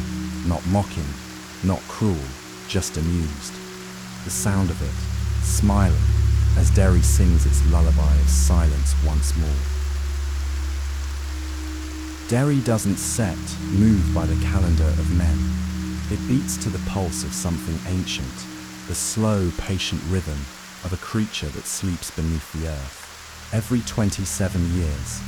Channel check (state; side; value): identical; both; correlation 1.00